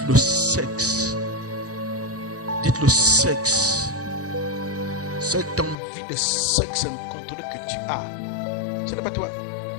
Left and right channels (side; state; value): right; drops out; at 5.8 s